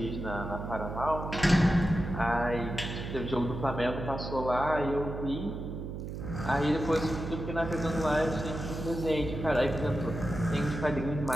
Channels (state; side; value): noise; right; hum, 7 dB below the sound